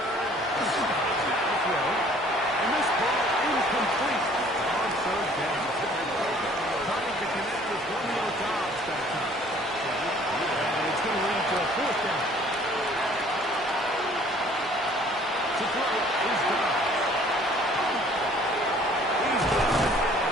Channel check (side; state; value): both; normal; correlation 0.55